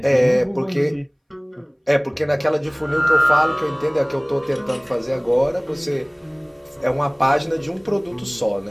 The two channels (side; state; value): both; identical; correlation 1.00